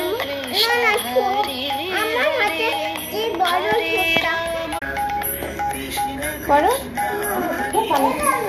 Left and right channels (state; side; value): identical; both; correlation 1.00